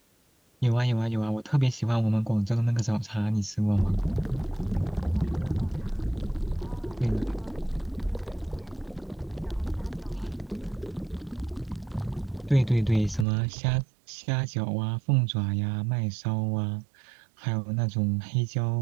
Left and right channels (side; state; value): left; drops out; at 13.2 s